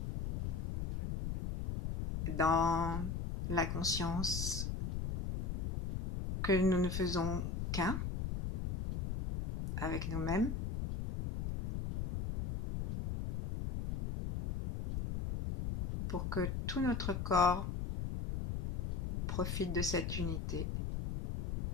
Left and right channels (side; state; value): left; noise; rumble, 3 dB below the sound